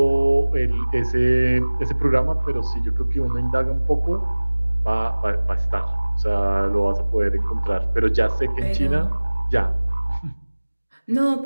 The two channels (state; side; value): inverted; both; correlation -1.00